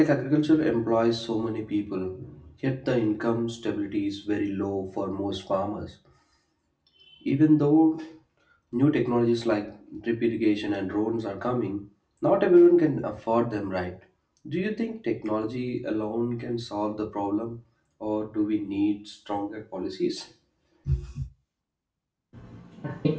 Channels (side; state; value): both; identical; correlation 1.00